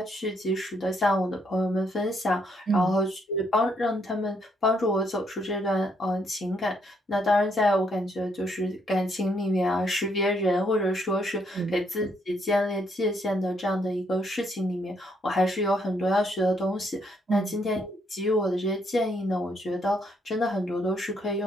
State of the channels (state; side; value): normal; both; correlation 0.73